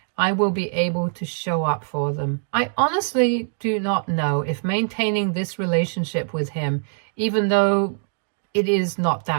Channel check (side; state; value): left; silent; digital silence